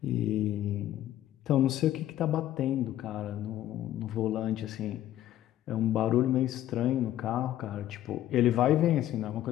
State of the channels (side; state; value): right; quieter; 12.9 dB